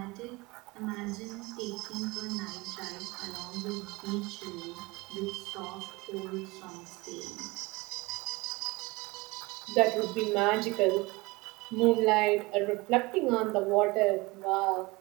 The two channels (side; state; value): left; quieter; 23.4 dB